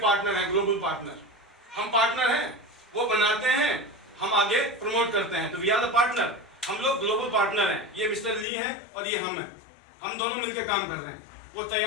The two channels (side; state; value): right; drops out; at 8.5 s